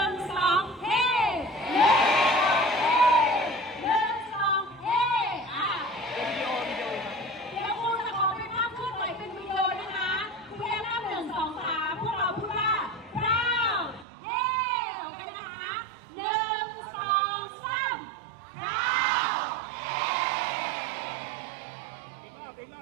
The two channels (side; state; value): left; drops out; at 14.1 s